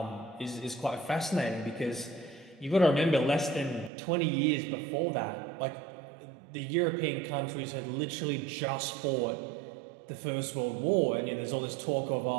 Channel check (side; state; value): left; drops out; at 3.9 s